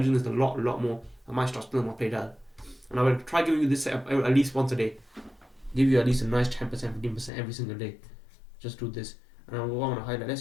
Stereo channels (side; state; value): right; drops out; at 7.3 s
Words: this a lot more. I might start spilling my play down. And I will try giving you this setup at least once a day. Give you at least a nice 10%, 15% every single day. Just do this. And I want to highlight.